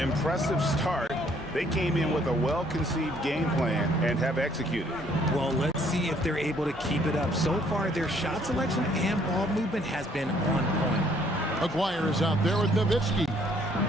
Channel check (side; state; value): both; normal; correlation 0.64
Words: start. They came in with a well-conceived game plan and have executed. Well, let's see if they're able to keep it up. So far, their shot selection and ball movement has been on point. Aguirre is out there with Nowitzki.